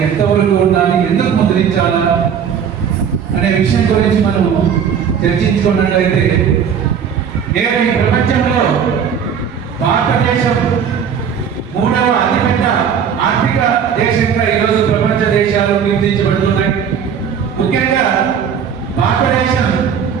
ఎంతవరకు ఉండాలి, ఎందుకు ముద్రించాలా అనే విషయం గురించి మనం చర్చించుకున్నట్లయితే నేడు ఈ ప్రపంచంలో భారతదేశం 3వ అతిపెద్ద ఆర్థిక దేశంగా ఈరోజు ప్రపంచ దేశాలు గుర్తించబడుతున్నాయి. ముఖ్యంగా భారతదేశం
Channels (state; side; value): quieter; left; 7.6 dB